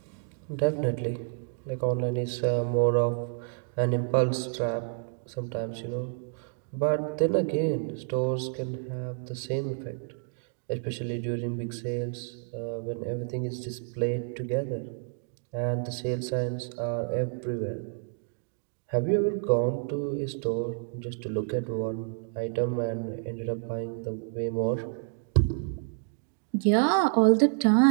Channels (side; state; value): left; silent; digital silence